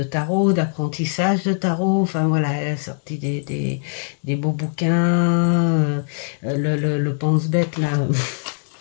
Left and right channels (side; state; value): right; silent; digital silence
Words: tarot, d'apprentissage de tarot. Enfin voilà, elle a sorti des beaux bouquins. Le pense-bête là.